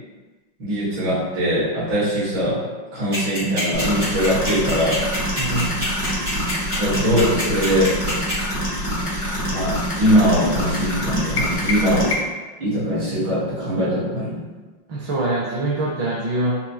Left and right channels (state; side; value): late; left; 5.6 ms